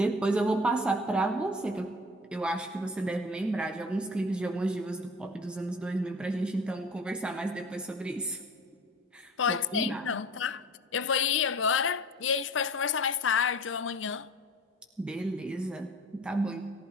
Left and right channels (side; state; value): both; normal; correlation 0.41